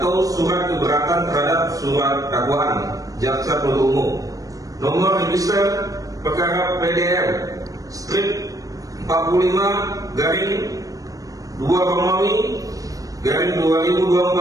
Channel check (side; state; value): left; late; 0.17 ms